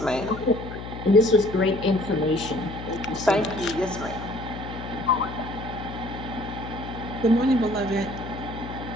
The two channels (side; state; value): left; noise; hum, 10 dB below the sound